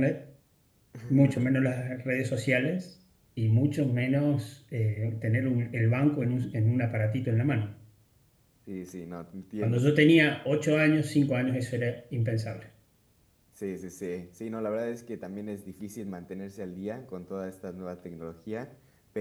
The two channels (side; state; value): both; identical; correlation 1.00